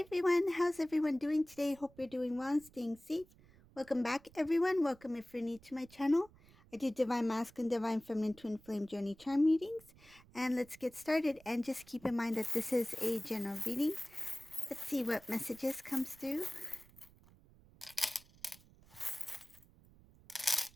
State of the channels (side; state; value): right; noise; rumble, 25 dB below the sound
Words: how's everyone doing today? Hope you're doing well and staying safe. Welcome back everyone. Welcome if you're new to my channel. I do Divine Masculine, Divine Feminine Twin Flame Journey Charm readings. And let's get started. And just keep in mind that this is a general reading. Let's see what messages comes through.